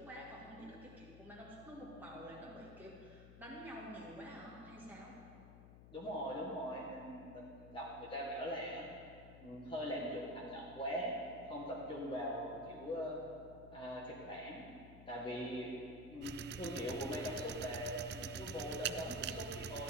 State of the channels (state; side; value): noise; left; hum, 15 dB below the sound